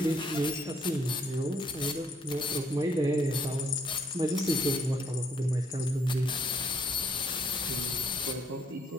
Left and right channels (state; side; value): normal; both; correlation 0.68